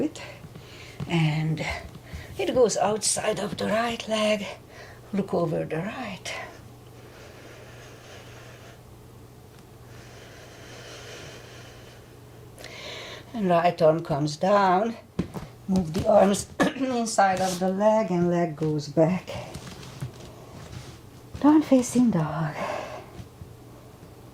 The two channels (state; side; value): identical; both; correlation 1.00